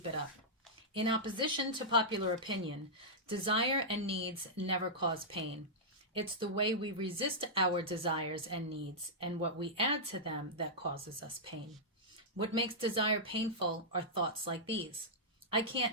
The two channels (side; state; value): both; normal; correlation -0.10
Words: it up. In opposition to popular opinion, desire and needs never cause pain. It's the way we resist our desires and needs and what we add to them that causes us pain. What makes desire painful are thoughts like these. I